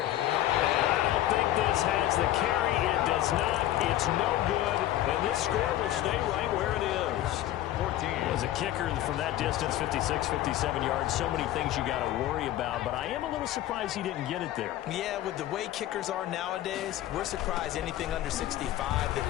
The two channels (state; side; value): quieter; right; 13.7 dB